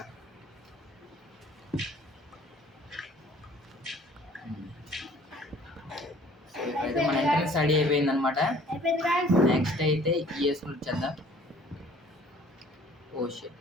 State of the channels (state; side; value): normal; both; correlation 0.54